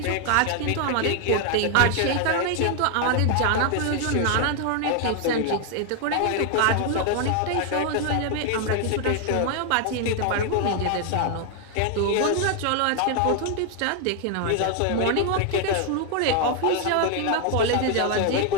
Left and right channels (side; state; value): both; different; correlation 0.00